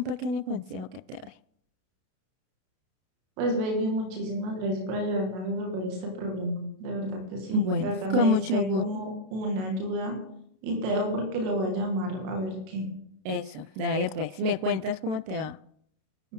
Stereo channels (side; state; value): left; late; 32 ms